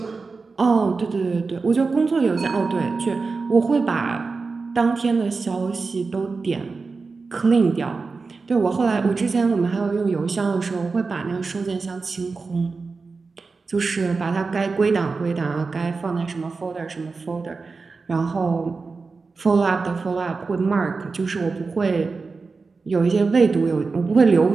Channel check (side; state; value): left; quieter; 4.3 dB